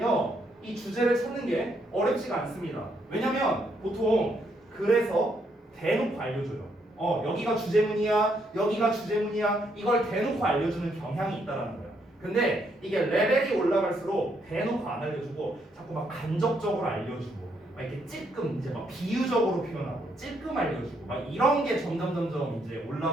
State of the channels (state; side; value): normal; both; correlation 0.74